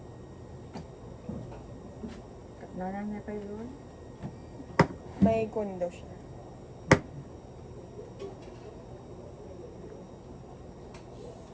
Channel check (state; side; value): identical; both; correlation 1.00